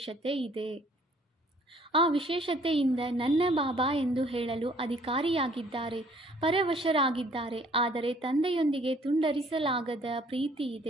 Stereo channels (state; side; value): normal; both; correlation 0.59